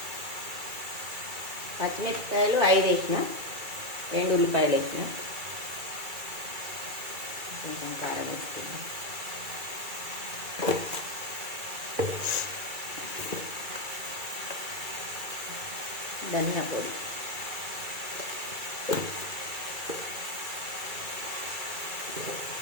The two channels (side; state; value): left; late; 2.3 ms